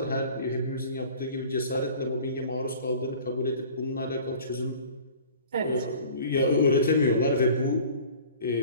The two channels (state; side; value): inverted; both; correlation -0.46